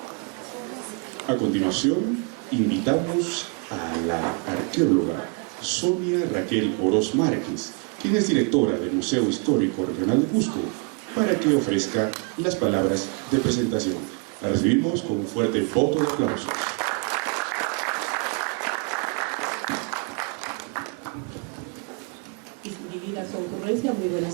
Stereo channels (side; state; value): left; quieter; 35.1 dB